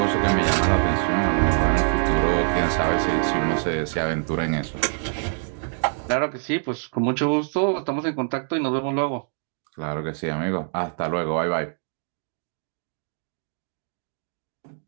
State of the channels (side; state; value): left; silent; digital silence